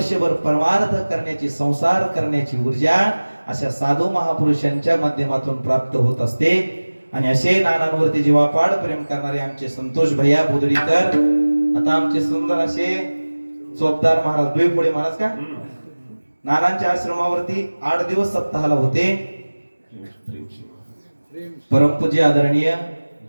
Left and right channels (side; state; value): both; inverted; correlation -1.00